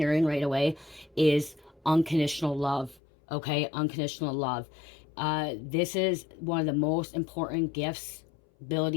right away is unconditional love, okay? Unconditional love. This is one of the most important gifts,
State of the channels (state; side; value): drops out; right; at 3.0 s